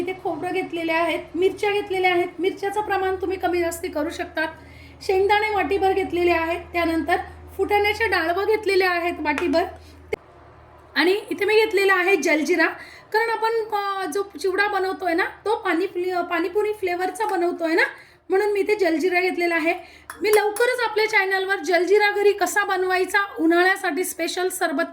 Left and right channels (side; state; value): both; identical; correlation 1.00